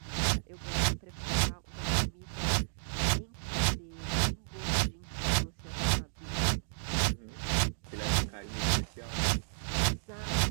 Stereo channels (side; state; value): left; silent; digital silence